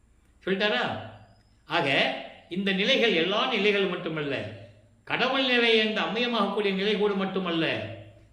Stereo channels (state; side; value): identical; both; correlation 1.00